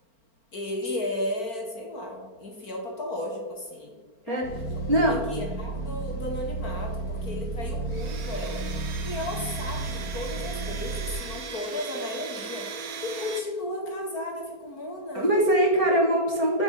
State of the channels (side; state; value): right; late; 4.3 ms